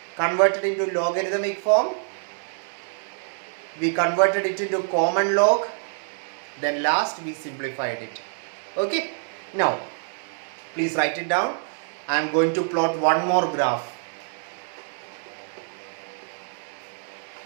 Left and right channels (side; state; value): left; silent; digital silence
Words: Converted into logarithmic form. We converted it into common log. Then last we simplified it. Okay. Now, please write it down. I am going to plot one more graph.